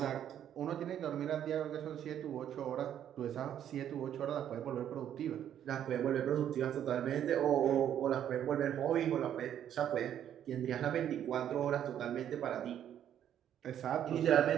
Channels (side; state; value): left; quieter; 10.2 dB